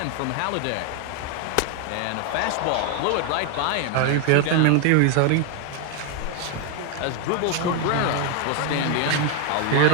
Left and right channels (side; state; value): both; different; correlation 0.01